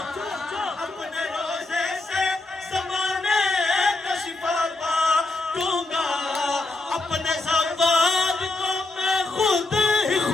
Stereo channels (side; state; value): right; quieter; 3.0 dB